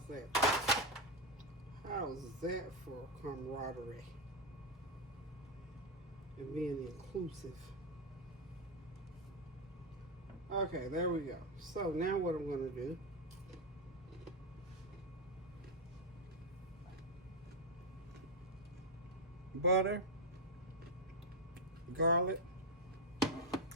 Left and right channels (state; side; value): normal; both; correlation 0.05